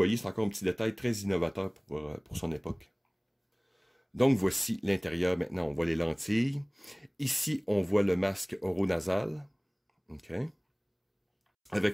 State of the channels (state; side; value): identical; both; correlation 1.00